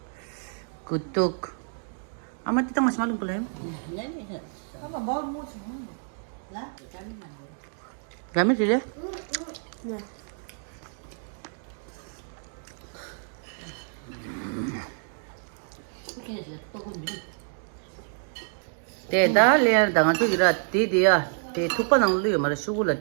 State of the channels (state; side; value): silent; left; 59 dB below the other